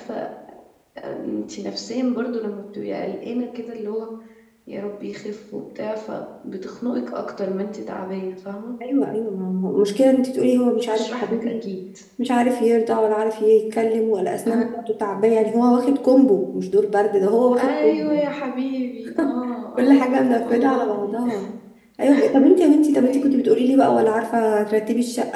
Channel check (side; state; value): both; identical; correlation 1.00